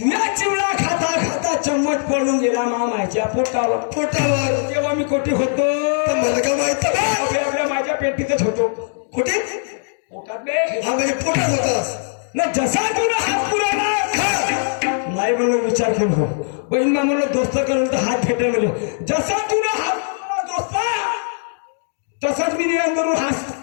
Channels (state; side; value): silent; right; digital silence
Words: चिवडा खाता खाता चम्मच पडून गेला मामाच्या पोटावर. तेव्हा मी कोठे होतो? मला काय माहित? आपल्या माझ्या पेटीतच होतो. कुठे? पोटात बे. हा म्हणजे पोटात होतास ना. जसा तुला हात पुरवला नाही म्हणून विचार केलो. बहीण मा म्हणलं दोस्त करून तर हात फेटे म्हणले. जसा तुला हात पुरवला दोस्ता, तसाच मी निरंतरून हात